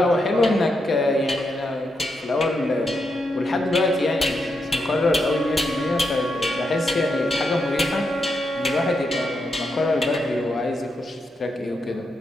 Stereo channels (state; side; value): normal; both; correlation 0.83